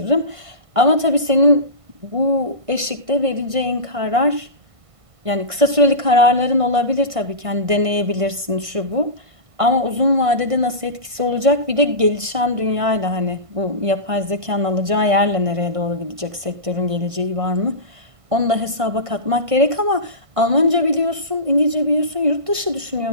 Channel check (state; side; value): late; left; 1.5 ms